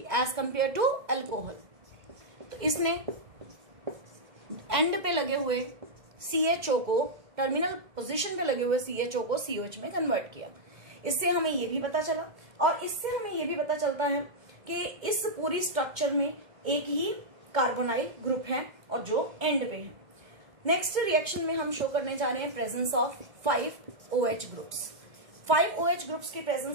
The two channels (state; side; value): late; left; 2.2 ms